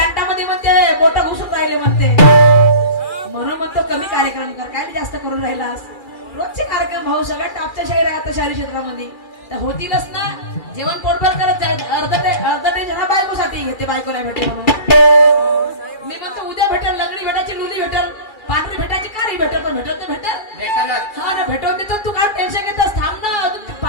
म्हणते बोट घुसून राहिले म्हणते म्हणून म्हणतो कमी कार्यक्रम कर काय जास्त करून राहिलास रोजचे कार्यक्रम भाऊ सगळ्यात टॉपच्या शाहीर आहे आता शहरी क्षेत्रामध्ये तर होतीलच ना जेवण पोटभर करत जाईल अर्ध ते जरा बायकोसाठी घेते बायको नाही भेटेल म्हणून मी म्हणतो उद्या भेटेल लंगडी भेटायची लुली भेटेल पांढरी भेटायची कारी भेटेल पण भेटत नाही भेटेल हा ना भेटवून देतो तू काय टेन्शन घेतोस थांब ना अजून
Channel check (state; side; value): late; right; 2.4 ms